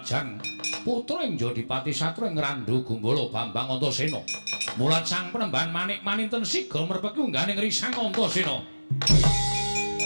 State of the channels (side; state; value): both; inverted; correlation -1.00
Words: putra ing Jodipati Satra ing Randu Gumbala Bambang Antasena mulat sang penemban manik maninten siga merpeki ungganing Risang Antasena.